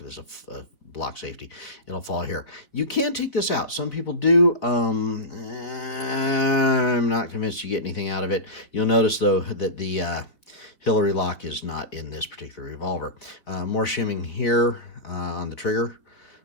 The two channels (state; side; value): late; right; 3.5 ms